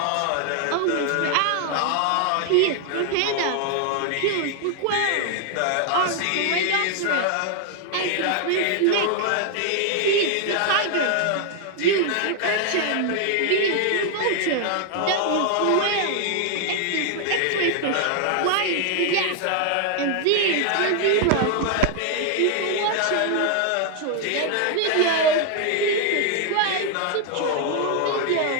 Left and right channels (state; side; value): different; both; correlation 0.00